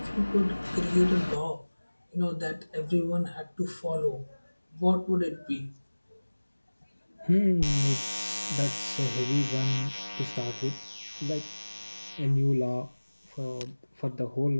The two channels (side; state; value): both; inverted; correlation -1.00